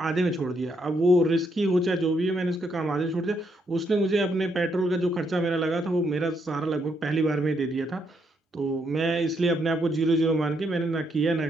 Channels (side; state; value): both; normal; correlation 0.75